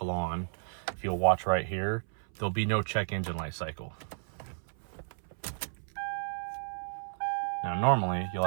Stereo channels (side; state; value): left; silent; 56 dB below the other